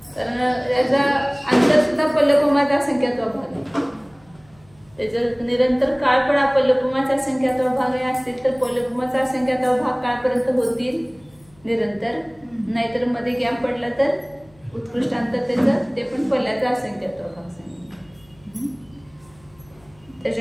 कारण याचा अंतर सुद्धा पल्लकुमाचा असंख्यात्व भाग आहे। त्याचा निरंतर काळ पण पल्लकुमाचा असंख्यात्व भाग असतील तर पल्लकुमाचा असंख्यात्व भाग काळपर्यंत होतील निरंतर नाहीतर मध्ये गॅप पडला तर उत्कृष्ट अंतर त्याचं ते पण पल्ल्याचा असंख्यात्व भाग सांगितलं।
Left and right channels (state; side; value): noise; left; hum, 29 dB below the sound